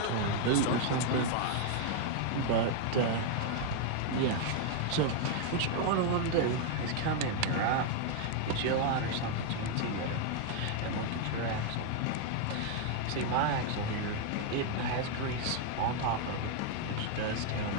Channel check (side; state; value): both; different; correlation 0.00